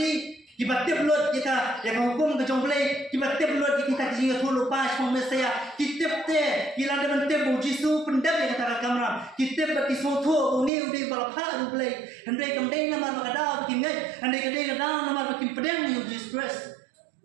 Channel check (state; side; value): drops out; left; at 10.7 s